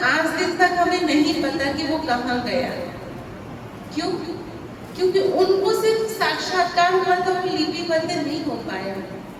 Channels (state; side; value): identical; both; correlation 1.00